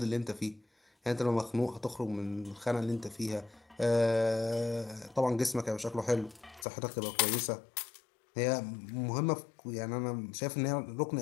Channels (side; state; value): right; drops out; at 6.7 s